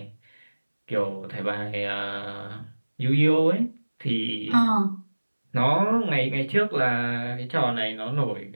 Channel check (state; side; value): inverted; both; correlation -1.00